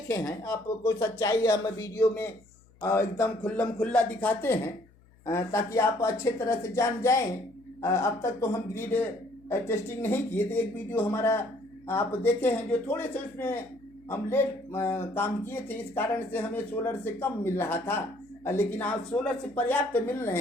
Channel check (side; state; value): left; noise; hum, 28 dB below the sound